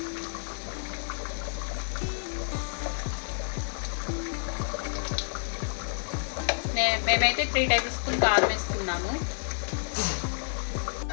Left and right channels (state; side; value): silent; right; digital silence